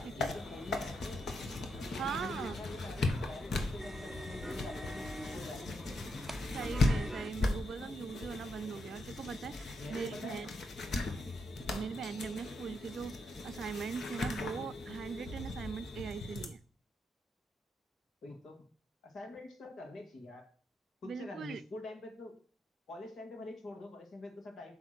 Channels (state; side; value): normal; both; correlation 0.81